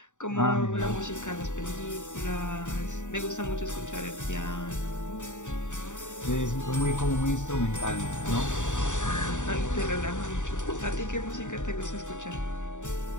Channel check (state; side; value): late; right; 0.85 ms